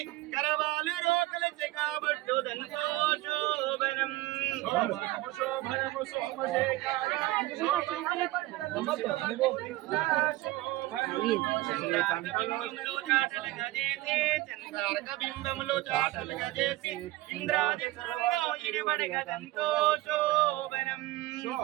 కరవాలు రోకలచి కాబట్టు దంతో శోభనం శోభనము సోమశేఖర బింబములు చాటలు గజేసి చంద్రార్క బింబములు చాటలు గజేసి ఇంద్రాది సురంలో ఇడిబడి గదంతో శోభనం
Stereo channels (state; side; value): quieter; left; 18.3 dB